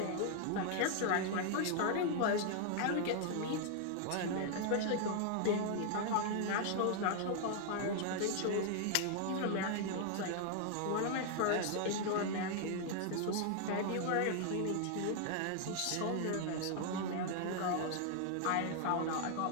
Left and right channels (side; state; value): both; different; correlation 0.00